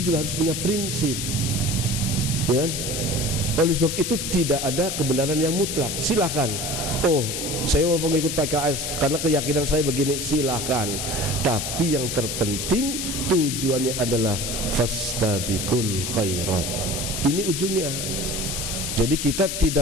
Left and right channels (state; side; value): noise; left; hiss, 3 dB below the sound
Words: harus punya prinsip, ya kan? Oleh sebab itu tidak ada kebenaran yang mutlak. Silakan. Oh, saya mau mengikut PKS karena keyakinan saya begini, silakan. Tapi yang terpenting tujuannya adalah fastabiqul khairat. Ini ujungnya. Jadi kita